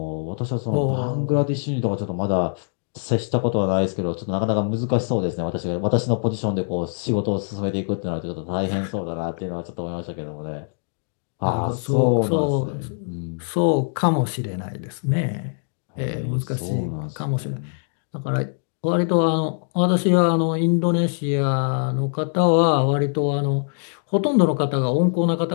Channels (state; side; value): silent; right; digital silence